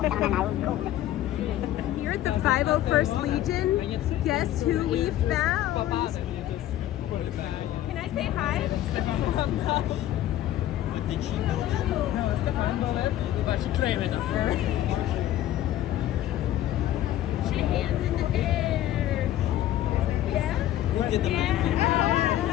Here at the 501st Legion, guess who we found? Can I say hi? What did she do? No, Stefan Bullet, but she claimed it first. Put your hands in the air. Yeah? Who did the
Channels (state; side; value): quieter; right; 13.1 dB